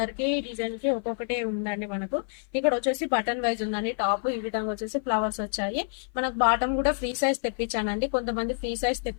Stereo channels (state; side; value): silent; right; 57 dB below the other